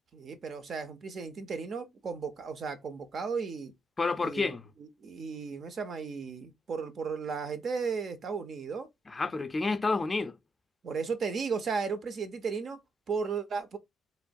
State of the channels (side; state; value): both; normal; correlation 0.79